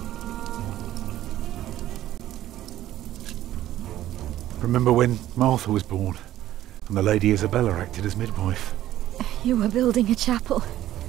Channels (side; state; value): left; quieter; 13.5 dB